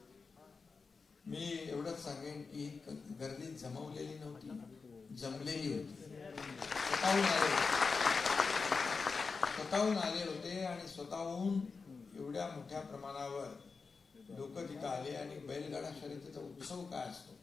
मी एवढंच सांगेन की गर्दी जमवलेली नव्हती, जमलेली होती. स्वतःहून आले होते. आणि स्वतःहून एवढ्या मोठ्या प्रमाणावर लोक तिथं आले. आणि बैलगाडा शर्यतीचा उत्सव काय असतो,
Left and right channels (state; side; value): quieter; right; 4.7 dB